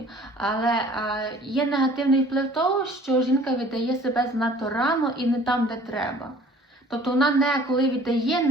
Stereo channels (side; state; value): both; normal; correlation 0.51